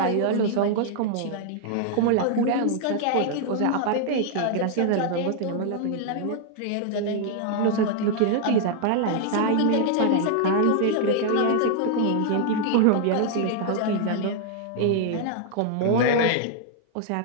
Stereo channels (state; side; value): different; both; correlation -0.01